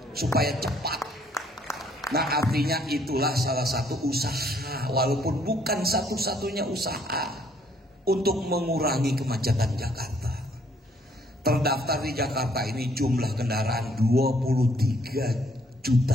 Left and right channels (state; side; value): normal; both; correlation 0.65